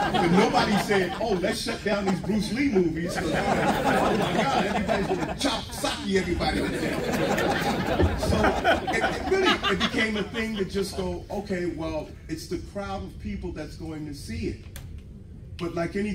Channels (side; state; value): both; identical; correlation 1.00